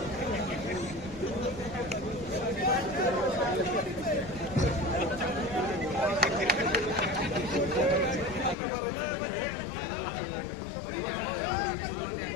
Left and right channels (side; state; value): right; drops out; at 8.6 s